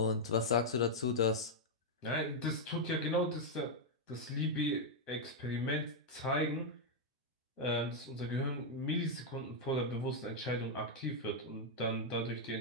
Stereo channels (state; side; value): normal; both; correlation -0.02